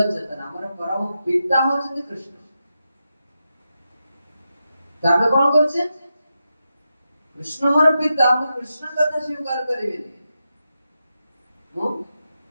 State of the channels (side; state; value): both; inverted; correlation -0.88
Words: चेतना हमर परम पिता होछि कृष्ण तामे कोन करछे कृष्ण हमर पिता हम कृष्ण कथा स्वीकार करिबे मो